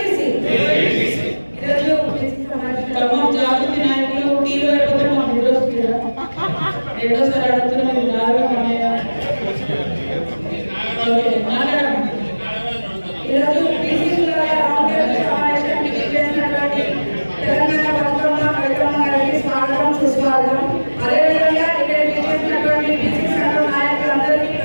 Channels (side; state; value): both; inverted; correlation -1.00